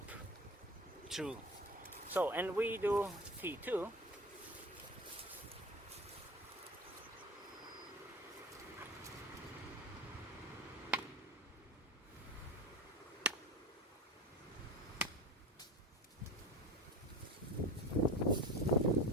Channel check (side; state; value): both; normal; correlation 0.31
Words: through. So, and we do T2.